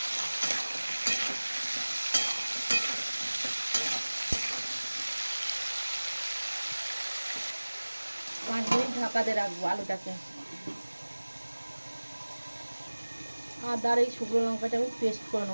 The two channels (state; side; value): inverted; both; correlation -1.00